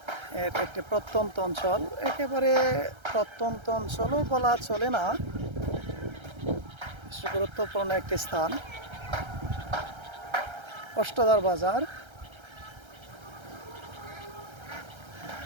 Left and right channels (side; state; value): left; late; 1.3 ms